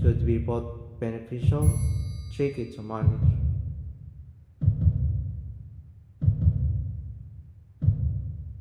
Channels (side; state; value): both; identical; correlation 1.00